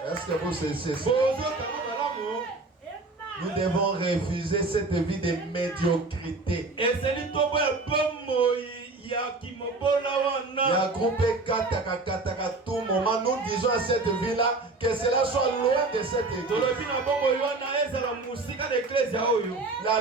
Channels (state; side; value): quieter; left; 3.4 dB